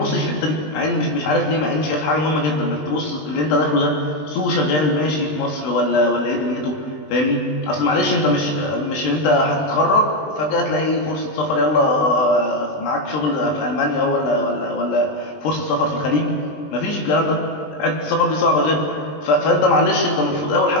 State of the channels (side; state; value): right; late; 20 ms